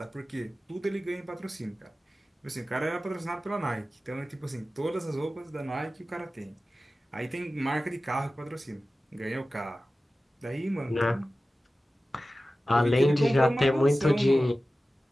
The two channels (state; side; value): normal; both; correlation 0.95